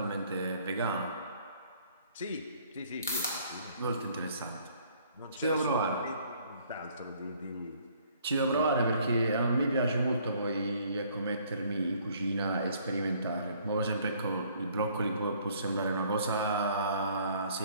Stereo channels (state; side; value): inverted; both; correlation -0.60